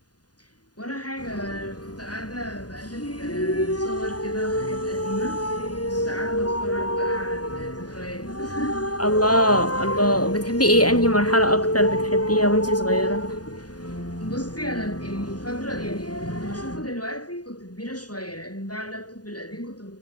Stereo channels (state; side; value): late; right; 0.69 ms